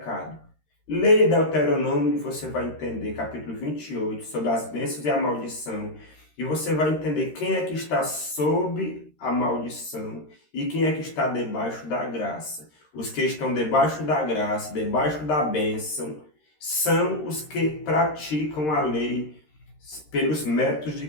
Leia Deuteronômio e você vai entender, capítulo 28, sobre as bênçãos e a maldição, e você vai entender quem é que está sob a maldição e quem é que está debaixo da graça. Os que estão debaixo da graça, debaixo da bênção, são os que praticam a lei pelos méritos de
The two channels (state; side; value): late; right; 13 ms